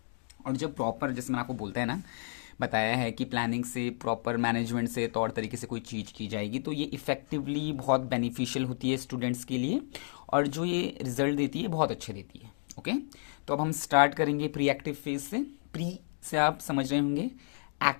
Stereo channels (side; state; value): right; silent; digital silence